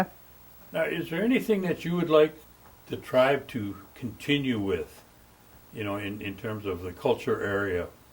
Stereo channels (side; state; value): both; identical; correlation 1.00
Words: Now, is there anything that you would like the tribe to continue with, in terms of the culture area?